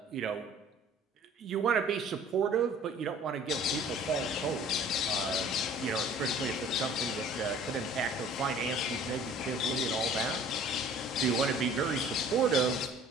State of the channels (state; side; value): normal; both; correlation 0.50